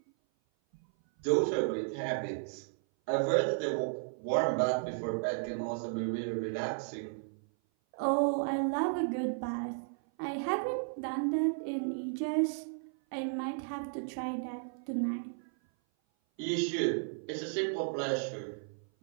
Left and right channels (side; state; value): left; silent; 55 dB below the other